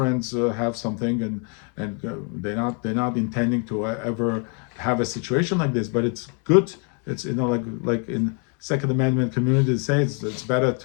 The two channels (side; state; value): right; quieter; 39.1 dB